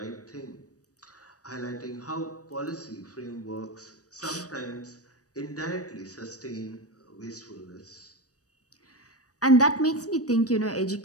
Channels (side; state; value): right; late; 0.67 ms